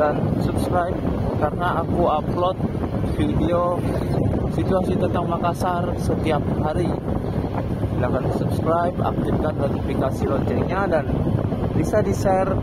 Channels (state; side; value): identical; both; correlation 1.00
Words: subscribe karena aku upload video situasi tentang Makassar setiap hari. Silahkan subscribe, aktifkan notifikasi loncengnya, dan bisa di-share